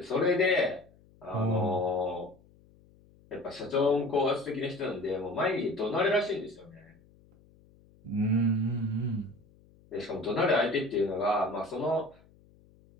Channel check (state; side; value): noise; left; hum, 28 dB below the sound